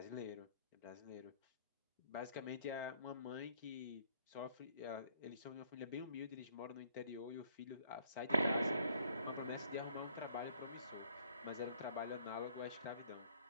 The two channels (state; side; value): inverted; both; correlation -0.63